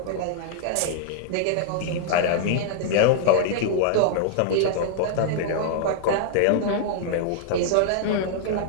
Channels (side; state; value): both; different; correlation -0.01